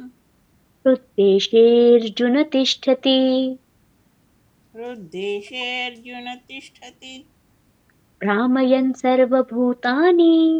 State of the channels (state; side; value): identical; both; correlation 1.00